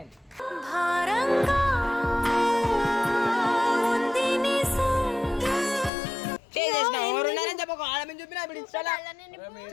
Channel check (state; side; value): drops out; right; at 5.9 s